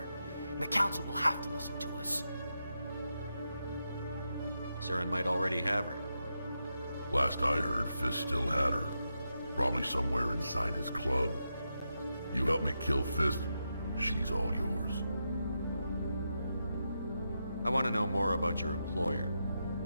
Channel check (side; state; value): both; inverted; correlation -0.86